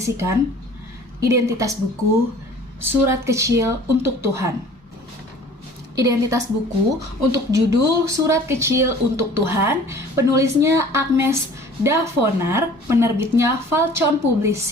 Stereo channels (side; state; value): both; normal; correlation 0.48